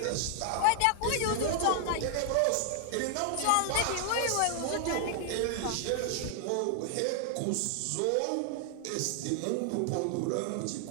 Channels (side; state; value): both; different; correlation 0.00